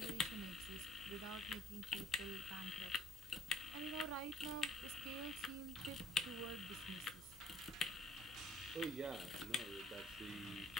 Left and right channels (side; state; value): right; noise; hum, 17 dB below the sound